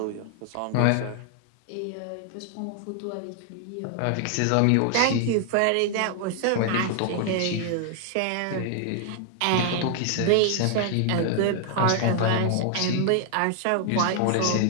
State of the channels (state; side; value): different; both; correlation 0.00